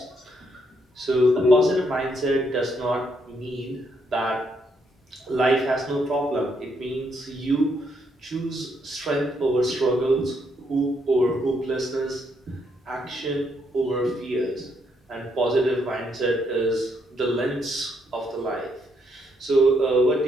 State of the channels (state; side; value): normal; both; correlation 0.75